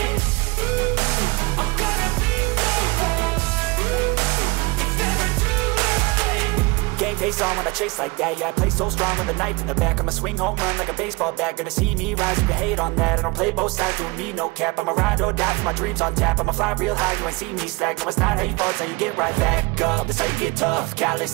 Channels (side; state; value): left; quieter; 25.3 dB